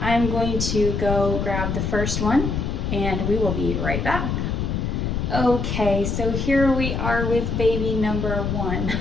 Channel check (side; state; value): left; noise; rumble, 1 dB below the sound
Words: I'm going to go grab the first one and we will be right back. Okay, so here we are with baby number 1.